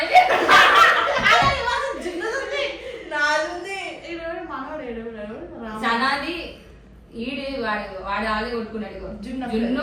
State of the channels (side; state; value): both; identical; correlation 1.00